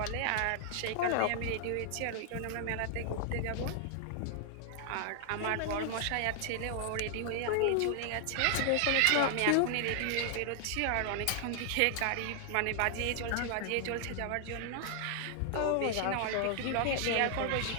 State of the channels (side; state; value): both; different; correlation 0.00